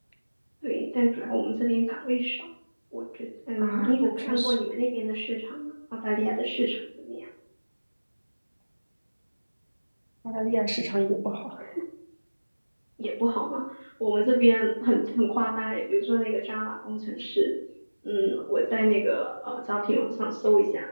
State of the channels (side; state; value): both; inverted; correlation -1.00